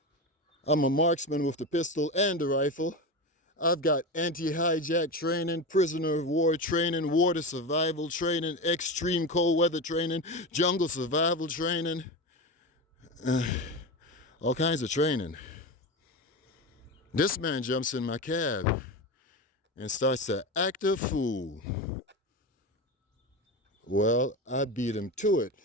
I'm a marksman with the pistol and the rifle. I've got anti-hijack training, prisoner of war training, water survival training, extreme cold weather training, jungle survival training, all kinds of training. This man jumps in my cab and starts to act a fool. Well, I beat him to it.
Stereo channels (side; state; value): both; normal; correlation 0.22